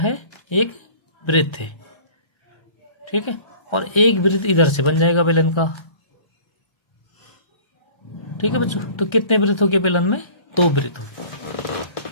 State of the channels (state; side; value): late; right; 1.3 ms